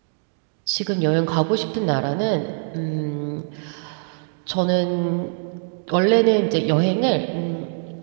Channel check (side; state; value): left; silent; digital silence